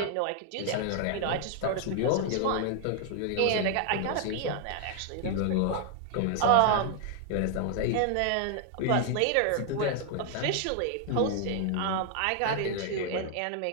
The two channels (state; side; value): different; both; correlation 0.00